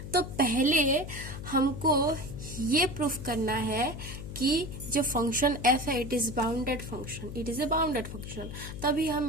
तो पहले हमको ये प्रूफ करना है कि जो फंक्शन f है it is bounded function, it is a bounded function. तभी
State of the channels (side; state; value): left; noise; hum, 9 dB below the sound